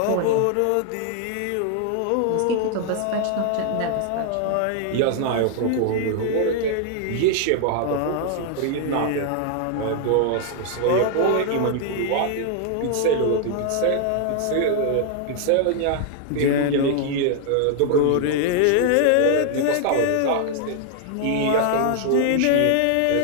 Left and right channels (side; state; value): both; different; correlation 0.00